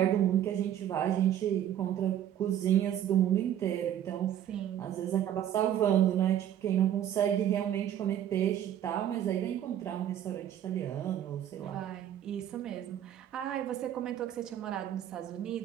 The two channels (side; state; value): left; quieter; 10.8 dB